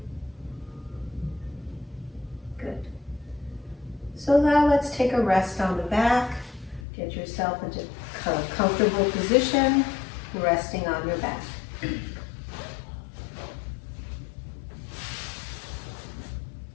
So now let's take a rest on the back. Get yourself into a comfortable position, resting on your back.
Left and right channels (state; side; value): drops out; right; at 6.8 s